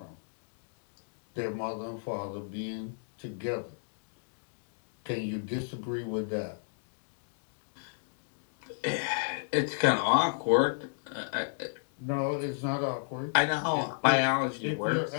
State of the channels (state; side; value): silent; right; digital silence